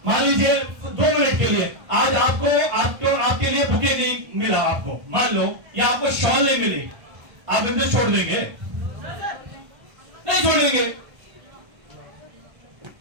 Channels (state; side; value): late; left; 1.3 ms